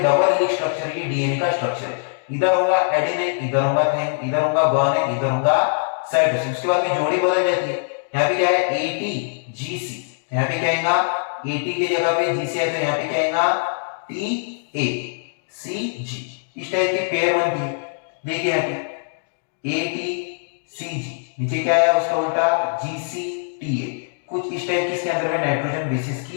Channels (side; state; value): right; silent; digital silence